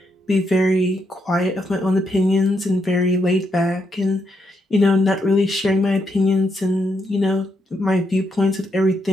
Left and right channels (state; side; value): normal; both; correlation 0.80